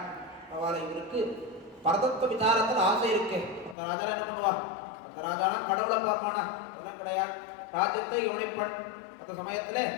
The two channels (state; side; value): drops out; right; at 3.8 s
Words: அவளை இவருக்கு பரதத்துவ விசாரத்தில் ஆசை இருக்கு. அந்த ராஜா என்ன பண்ணுவா? அந்த ராஜானா கடவுளை பார்ப்பானா? அதெல்லாம் கிடையாது. ராஜ்யத்தை யோனிப்பன். அந்த சமயத்துல